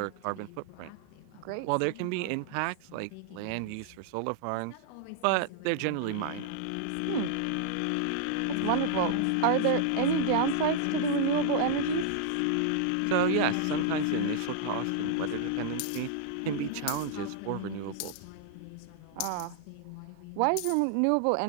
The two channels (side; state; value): both; different; correlation -0.01